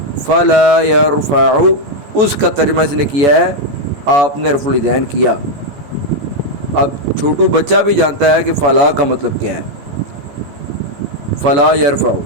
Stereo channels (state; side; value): late; left; 14 ms